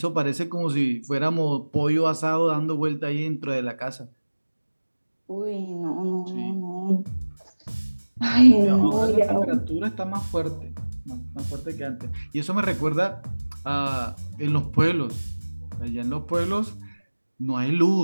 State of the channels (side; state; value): both; inverted; correlation -1.00